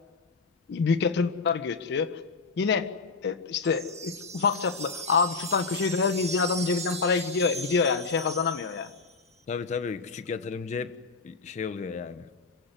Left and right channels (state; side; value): quieter; right; 4.5 dB